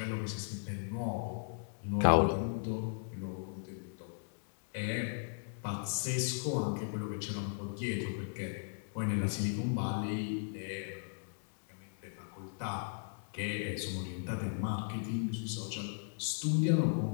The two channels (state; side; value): silent; right; digital silence